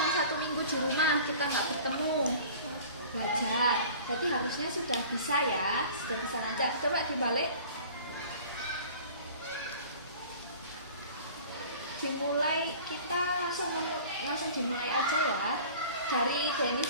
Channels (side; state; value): both; inverted; correlation -0.44